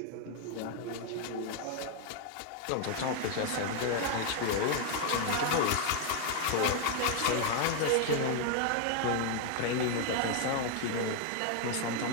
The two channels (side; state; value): both; different; correlation 0.00